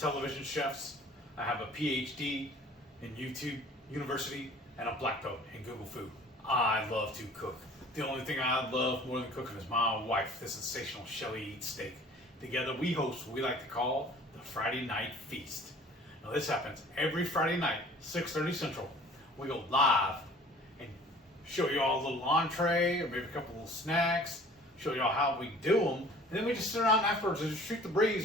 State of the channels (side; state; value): both; normal; correlation 0.49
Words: chefs. I have a PhD in YouTube University and a black belt in Google Food. I love to cook. The only thing I love more than cooking is my wife, the sensational Shelly Eats Steak. Together we host what we like to call the Friday Night Feast. Now this happens every Friday night, 6:30 Central. We go live and show you all a little entree or maybe a couple little snacks, show you all how we do them, and then we just sit around afterwards and just shoot the